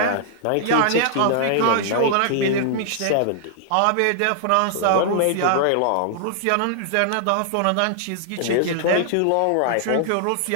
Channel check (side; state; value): both; different; correlation -0.01